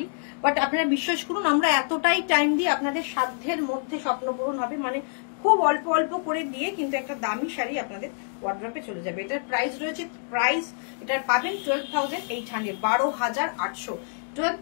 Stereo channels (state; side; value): silent; right; digital silence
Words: বাট আপনারা বিশ্বাস করুন আমরা এতটাই টাইম দিয়ে আপনাদের সাধ্যের মধ্যে স্বপ্ন পূরণ হবে, মানে খুব অল্প অল্প করে দিয়ে কিন্তু একটা দামি শাড়ি আপনাদের ওয়ার্ড্রপে চলে যাবে। এটার প্রাইস রয়েছে, প্রাইস এটার পাবেন 12,800, 12,800,